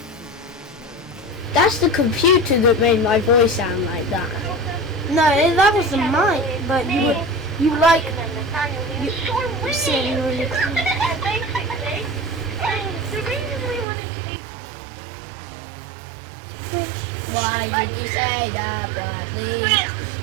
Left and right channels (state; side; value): drops out; left; at 13.9 s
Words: That's the computer that made my voice sound like that. No, that was the mic, but you like saying really cool. Why did you say that, Bradley?